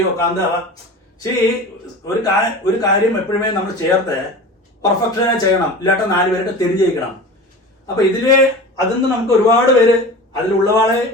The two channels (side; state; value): both; normal; correlation 0.34